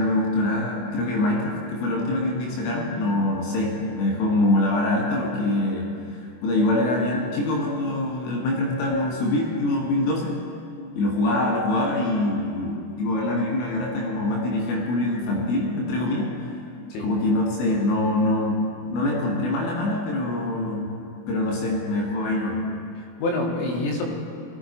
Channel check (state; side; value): late; right; 24 ms